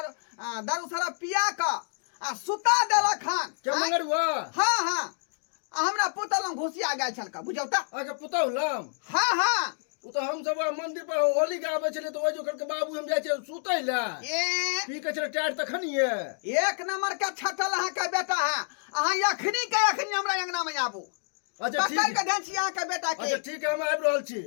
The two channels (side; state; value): right; silent; digital silence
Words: सारा पिया का आ सुता देलक हन क्या मंगर हुआ हां हां हमरा पुतल में घुसिया गेल छल का बुझियो त आके पुतौ लम हां हां उ तो हम सब मंदिर पर होली के आबे छले तो ओइ जो करके बाबू हम जाय छै सुतै ला ए पी के छले टाइट तखनिए एक नंबर के छटल अहाँ के बेटा है अहाँ अखनी के अखनी हमरा अंगना में आबू अच्छा पकड़ ठीक के ध्यान छी अहाँ के बेटा के अच्छा ठीक है हम आबि रहल छी